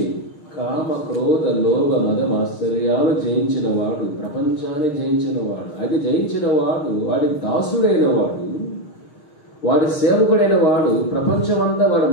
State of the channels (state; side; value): late; right; 6.4 ms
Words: కామ క్రోధ లోభ మద మాత్సర్యాలు జయించిన వాడు, ప్రపంచాన్ని జయించిన వాడు. అది జయించిన వాడు, వాడి దాసుడైన వాడు, వాడి సేవకుడైన వాడు, ప్రపంచం అంతా వాడి